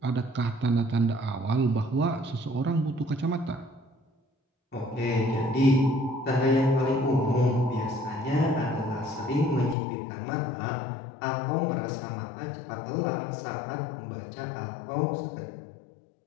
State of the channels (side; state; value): right; drops out; at 9.8 s